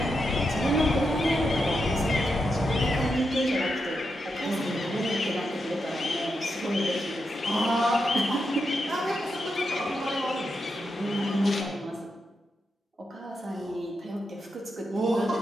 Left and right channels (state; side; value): normal; both; correlation 0.85